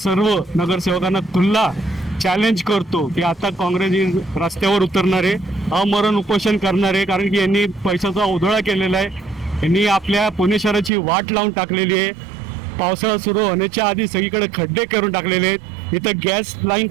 नगरसेवकांना खुल्ला चॅलेंज करतो की आता काँग्रेस रस्त्यावर उतरणार आहे, अमरण उपोषण करणार आहे. कारण की यांनी पैशाचा उधळा केलेला आहे. यांनी आपल्या पुणे शहराची वाट लावून टाकलेली आहे. पावसाळा सुरू होण्याच्या आधी सगळीकडे खड्डे करून टाकलेले आहेत. इथं गॅस लाईन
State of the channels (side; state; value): left; drops out; at 10.9 s